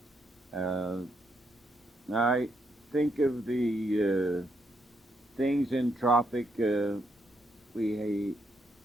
I think of the things in Tropic, we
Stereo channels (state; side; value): normal; both; correlation 0.77